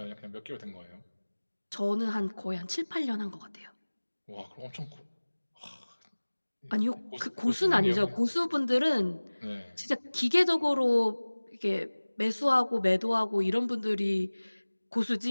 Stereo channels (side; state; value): both; inverted; correlation -1.00